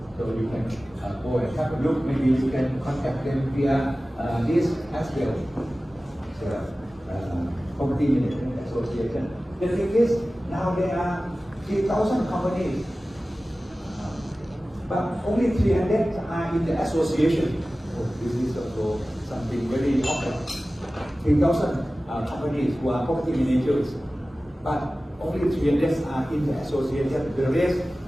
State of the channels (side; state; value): both; normal; correlation 0.96